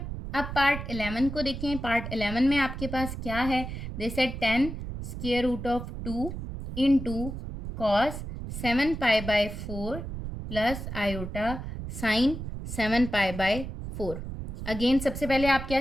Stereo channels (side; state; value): right; noise; rumble, 7 dB below the sound